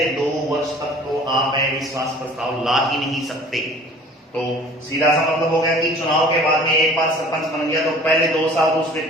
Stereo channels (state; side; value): normal; both; correlation 0.48